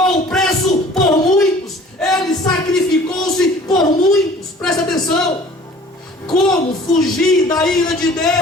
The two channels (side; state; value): both; normal; correlation 0.49